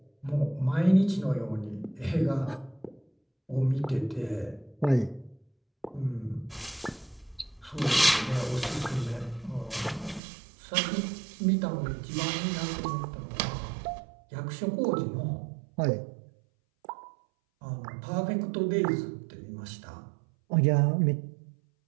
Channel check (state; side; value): drops out; left; at 10.2 s